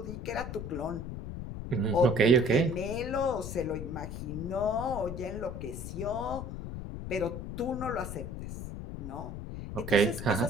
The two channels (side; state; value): left; noise; rumble, 7 dB below the sound